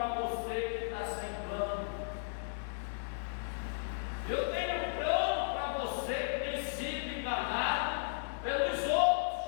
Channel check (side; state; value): right; silent; 54 dB below the other